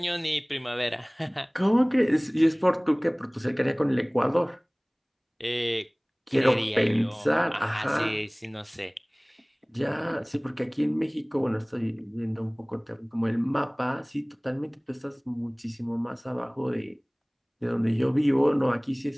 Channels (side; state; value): both; identical; correlation 1.00